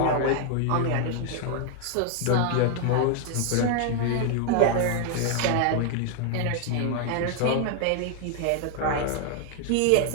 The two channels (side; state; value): both; different; correlation 0.00